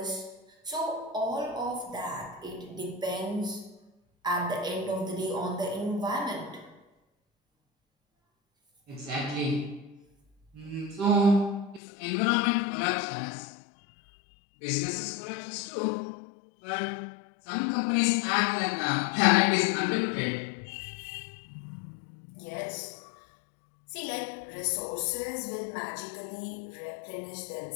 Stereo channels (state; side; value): drops out; right; at 11.8 s